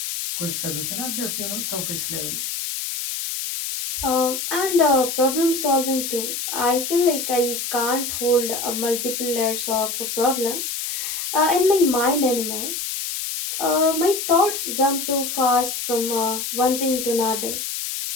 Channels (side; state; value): left; noise; hiss, 4 dB below the sound